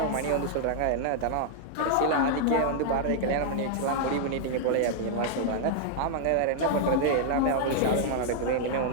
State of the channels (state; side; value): different; both; correlation -0.01